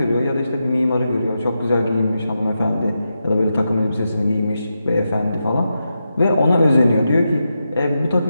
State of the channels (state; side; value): inverted; both; correlation -0.87